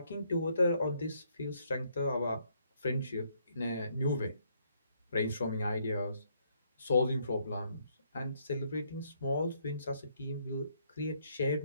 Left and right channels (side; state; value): both; inverted; correlation -0.71